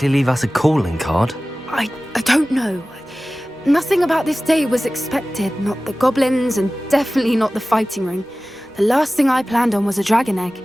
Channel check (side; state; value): both; normal; correlation 0.97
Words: leave us a calling card. I don't know. Nothing about this day was expected. Not the goblins, and definitely not the fighting ring. The last thing I planned on was a dragon egg.